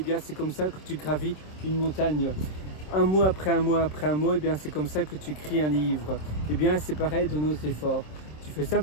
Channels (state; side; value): late; right; 26 ms